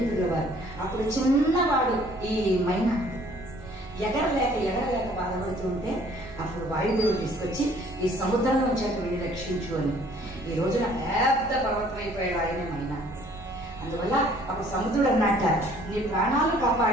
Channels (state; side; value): noise; right; rumble, 17 dB below the sound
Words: వారు. అప్పుడు చిన్నవాడు ఈ మైనాకుడు ఎగరలేక బాధపడుతూ ఉంటే అప్పుడు వాయుదేవుడు తీసుకొచ్చి ఈ సముద్రంలో వచ్చాక వెళ్ళి రక్షించు అని. ఈ రోజున పెద్ద పర్వతం అయిపోయాడు ఆయనే మైనాకుడు. అందువల్ల అప్పుడు సముద్రుడు అన్నట్ట, నీ ప్రాణాలు